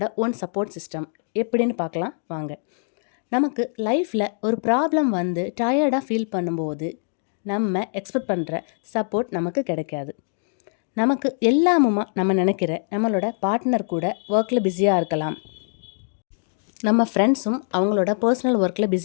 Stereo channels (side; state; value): right; silent; digital silence